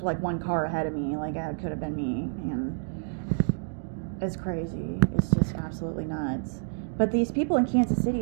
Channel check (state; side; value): silent; left; digital silence